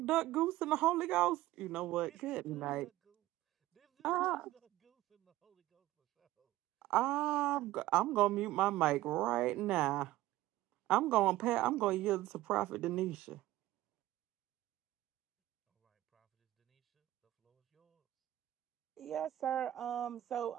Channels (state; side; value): quieter; left; 15.8 dB